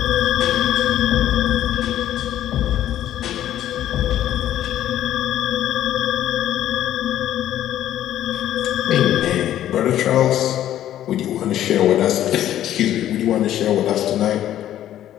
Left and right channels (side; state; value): right; quieter; 12.1 dB